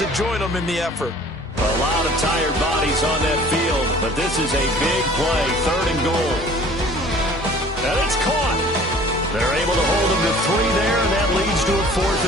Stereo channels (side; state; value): both; normal; correlation 0.49